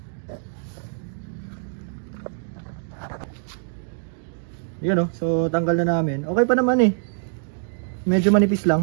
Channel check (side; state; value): left; silent; 62 dB below the other